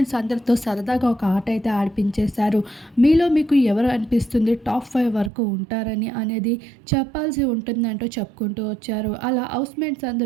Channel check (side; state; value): left; drops out; at 5.3 s